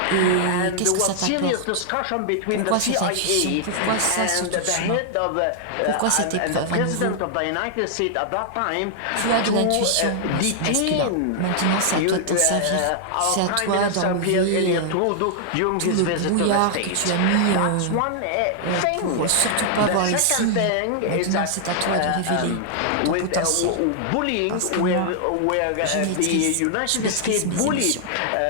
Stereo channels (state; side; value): different; both; correlation -0.01